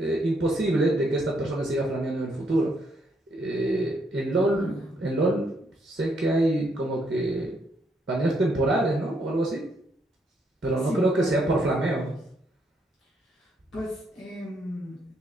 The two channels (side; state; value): both; normal; correlation 0.74